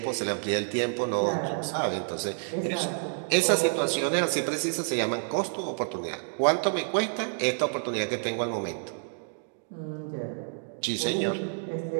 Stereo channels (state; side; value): silent; left; digital silence